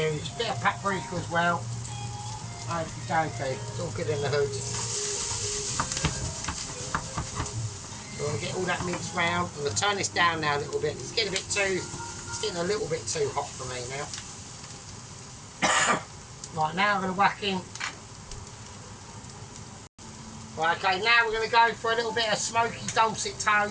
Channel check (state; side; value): identical; both; correlation 1.00